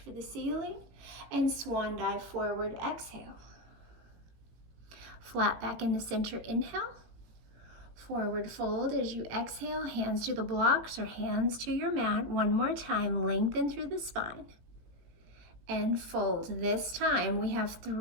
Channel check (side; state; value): left; late; 18 ms